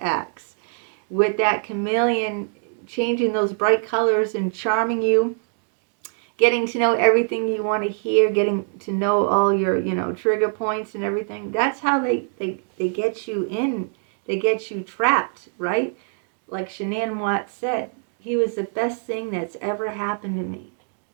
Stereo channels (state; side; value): silent; left; 63 dB below the other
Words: acts, with that chameleon changing those bright colors and charming you, getting to know everything you want to hear, getting to know all your, trigger points and everything. That's how they get you in. They get you trapped, right? Like Shanann Watts said, he was the best thing that's ever happened to me.